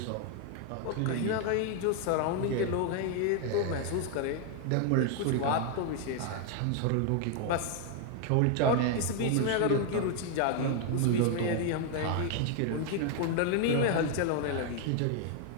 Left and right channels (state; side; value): different; both; correlation 0.00